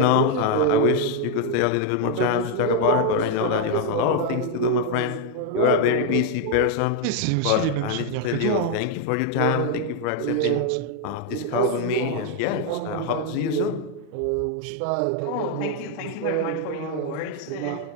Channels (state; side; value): different; both; correlation 0.01